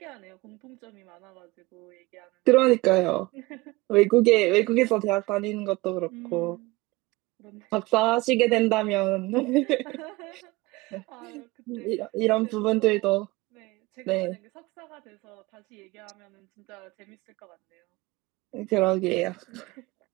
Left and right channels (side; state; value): left; quieter; 21.8 dB